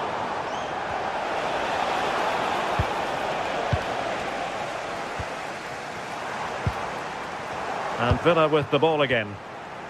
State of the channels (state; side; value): identical; both; correlation 1.00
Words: And Villa with the ball again.